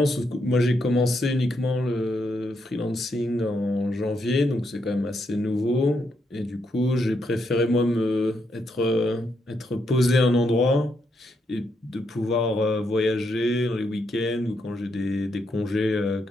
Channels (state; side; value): normal; both; correlation 0.79